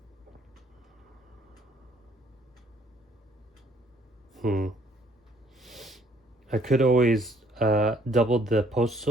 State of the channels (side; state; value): both; normal; correlation 0.63